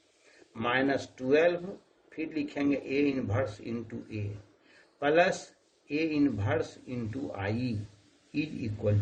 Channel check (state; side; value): identical; both; correlation 1.00